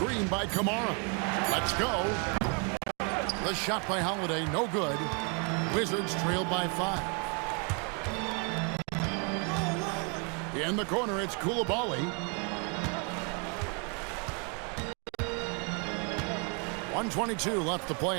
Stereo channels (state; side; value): quieter; left; 36.2 dB